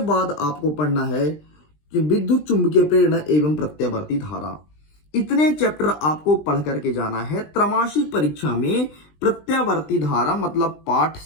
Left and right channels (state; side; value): late; right; 20 ms